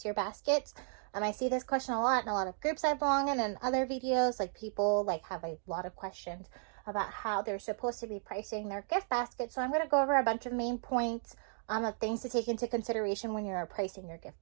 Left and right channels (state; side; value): silent; left; 55 dB below the other